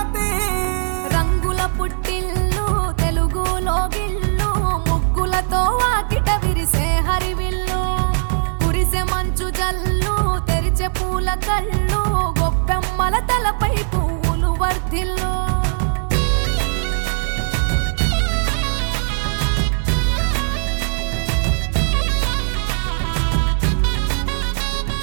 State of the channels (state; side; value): silent; left; 55 dB below the other